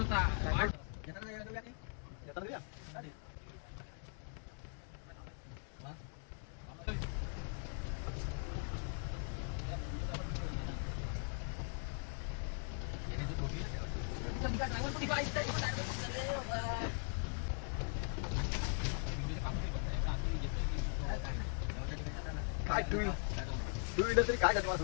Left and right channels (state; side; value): silent; right; 51 dB below the other